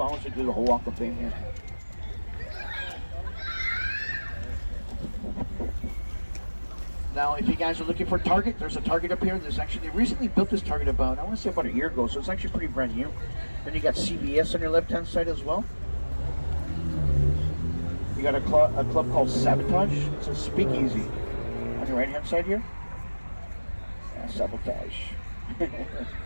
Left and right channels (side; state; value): both; inverted; correlation -1.00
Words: hours to do the whole walk of fame here. Now, if you guys are looking for Target, there's a Target up here. They recently built this Target about, I want to say about a year ago, so it's actually pretty brand new. Then you got CVS on your left-hand side as well. You got a club called Sabotage. It's a speakeasy on your right-hand side here. Yeah, Sabotage.